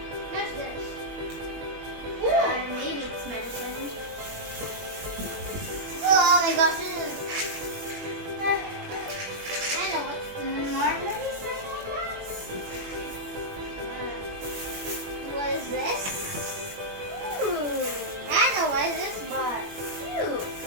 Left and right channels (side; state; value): left; late; 21 ms